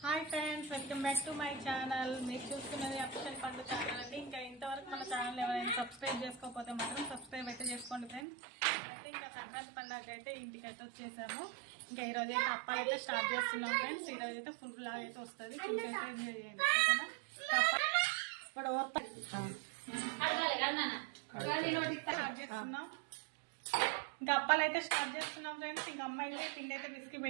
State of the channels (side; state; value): left; drops out; at 8.2 s